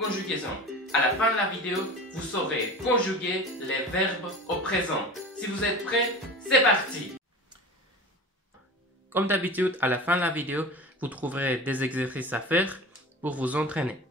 À la fin de la vidéo, vous saurez conjuguer les verbes au présent. Si vous êtes prêts, c'est parti! Comme d'habitude, à la fin de la vidéo, vous trouverez des exercices à faire pour vous entraîner.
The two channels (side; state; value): both; normal; correlation 0.34